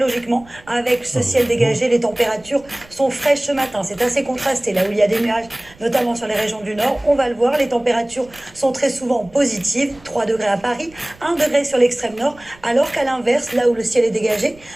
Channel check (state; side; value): noise; right; rumble, 25 dB below the sound